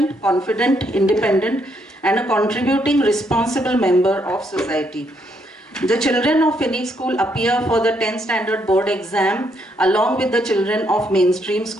confident, independent, and a contributing responsible member of society. The children of Phoenix School appear for the 10th standard board exam along with the children of mainstream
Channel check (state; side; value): normal; both; correlation 0.74